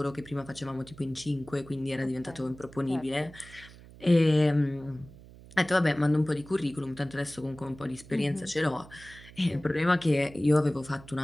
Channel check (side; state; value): right; noise; hum, 20 dB below the sound